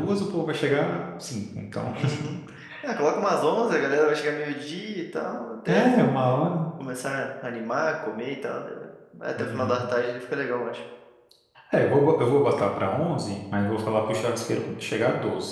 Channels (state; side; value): identical; both; correlation 1.00